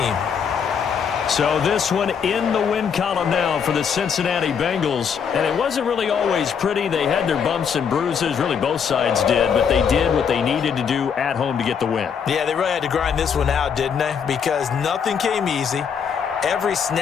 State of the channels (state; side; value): quieter; right; 7.0 dB